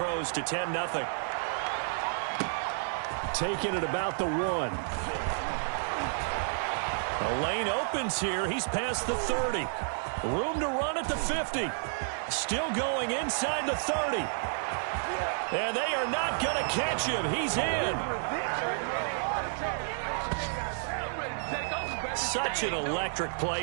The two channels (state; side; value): silent; left; digital silence